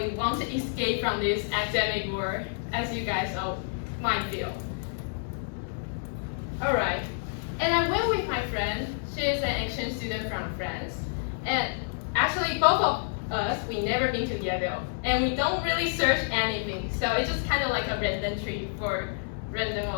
want to escape from this academic world, as you guys all might feel. Alright, and I went with my friend. She is an exchange student from France, and actually both of us, we never been to Yale, and we don't really search anything, so it's just kind of like a random trip for random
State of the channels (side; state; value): right; silent; 58 dB below the other